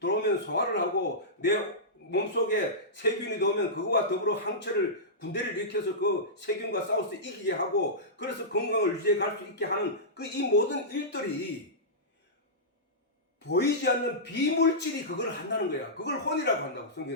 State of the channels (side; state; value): both; normal; correlation -0.16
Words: 소화를 하고 내 몸속에 세균이 들어오면 그거와 더불어 항체를 군대를 일으켜서 그 세균과 싸워서 이기게 하고 그래서 건강을 유지해 갈 수 있게 하는 이 모든 일들이 보이지 않는 비물질이 그걸 한다는 거야. 그걸 혼이라고 한다고.